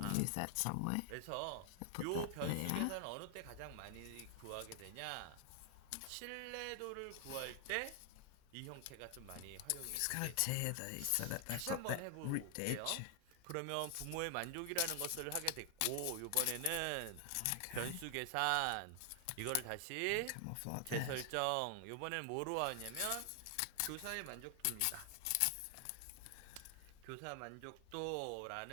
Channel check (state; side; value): different; both; correlation 0.00